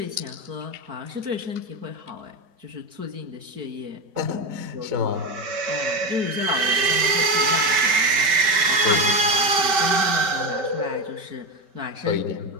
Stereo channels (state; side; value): late; left; 5.1 ms